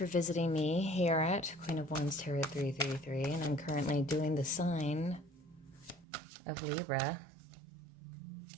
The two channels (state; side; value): drops out; left; at 6.1 s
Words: visiting me here at Queen of Wands Tarot 333, and I'm currently doing the sign of Libra.